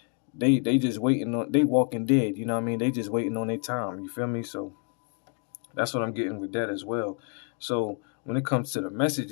just waiting on. They walking dead. You know what I mean? They just waiting on their time. You feel me? So that's what I'm getting with that as well. So when it comes to the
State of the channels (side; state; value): right; quieter; 38.4 dB